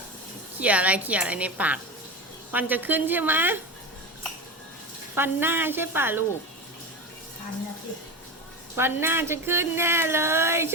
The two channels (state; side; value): normal; both; correlation 0.23